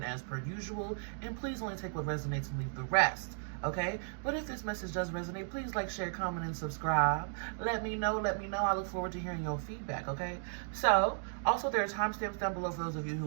as per usual. And please only take what resonates and leave the rest. Okay? But if this message does resonate, please like, share, comment, and subscribe. Let me know. I look forward to hearing your feedback, okay? So, also there are timestamps down below for those of you who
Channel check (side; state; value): left; silent; 54 dB below the other